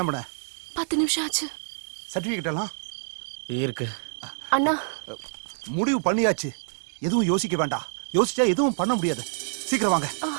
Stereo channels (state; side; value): silent; left; digital silence